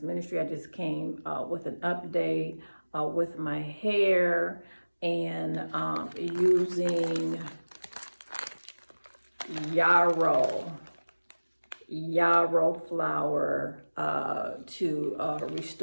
Ministry. I just came with an update with my hair and using yarrow flower to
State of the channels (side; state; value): both; inverted; correlation -1.00